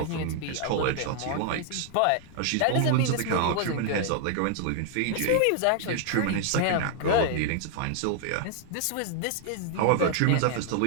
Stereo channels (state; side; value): different; both; correlation 0.00